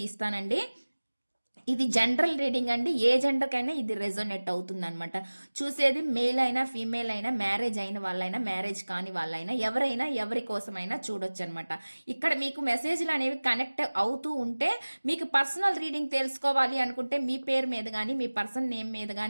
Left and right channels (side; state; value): both; inverted; correlation -1.00